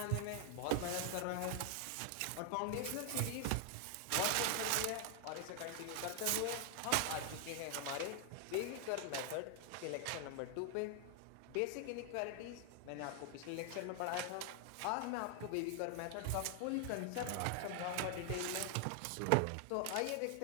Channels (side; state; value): both; different; correlation 0.00